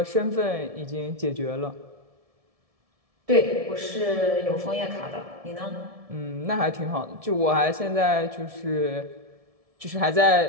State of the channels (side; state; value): left; late; 1.7 ms